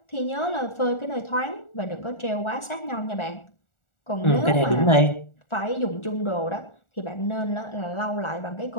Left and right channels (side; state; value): right; late; 1.4 ms